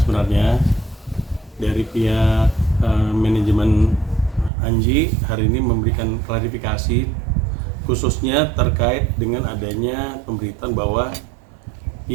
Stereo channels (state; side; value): drops out; left; at 4.5 s